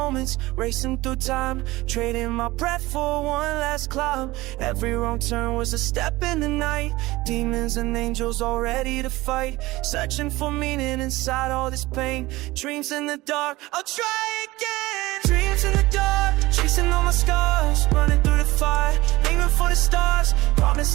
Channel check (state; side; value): quieter; left; 19.4 dB